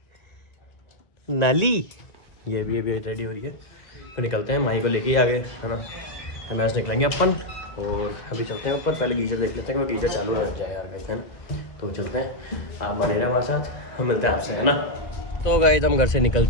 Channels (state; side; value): late; right; 1.6 ms